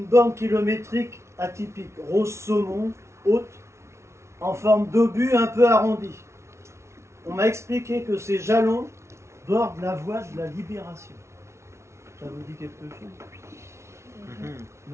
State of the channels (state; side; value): late; left; 0.13 ms